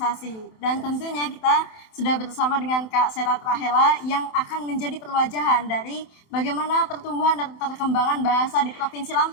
Dan tentunya kita sudah bersama dengan Kak Serat Rahela yang akan menjadi perwajahan dari bagaimana pertumbuhan dan perkembangan bahasa di Provinsi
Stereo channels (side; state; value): right; late; 27 ms